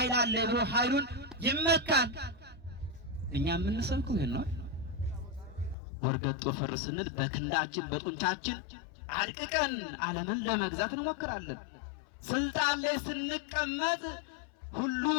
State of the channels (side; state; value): right; drops out; at 5.8 s